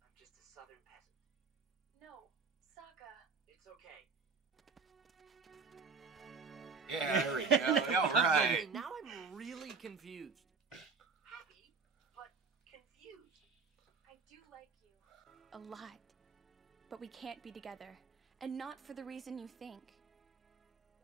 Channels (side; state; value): left; quieter; 4.9 dB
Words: I'm just a southern peasant. No, Sokka. It's okay. Yeah, there we go. All right. Now I'm really confused. Happy, but confused. I do like you. A lot. But we can't be together. And not for the reason you think.